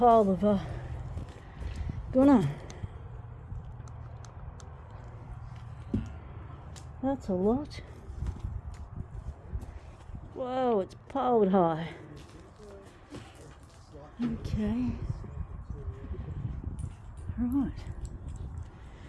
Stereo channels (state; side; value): identical; both; correlation 1.00